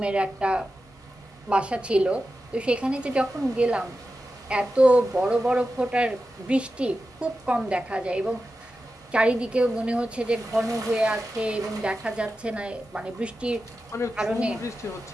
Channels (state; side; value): normal; both; correlation 0.92